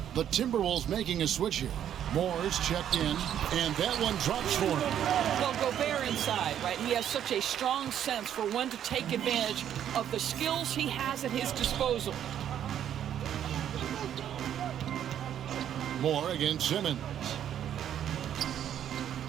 The Timberwolves making a switch here. Moore is checked in, and that one drops for him. Well, Gobert inside, right? He has such a strong sense for when to take advantage of the skills he has at his disposal. Moore against Simmons.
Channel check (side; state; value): left; quieter; 10.1 dB